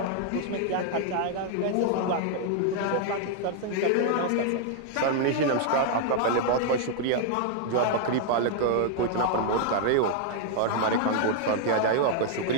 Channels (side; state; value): both; different; correlation -0.01